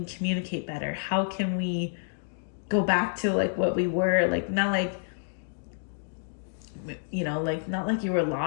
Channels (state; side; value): silent; right; digital silence